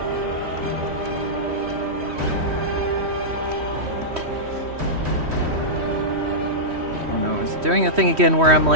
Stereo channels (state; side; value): late; left; 3.1 ms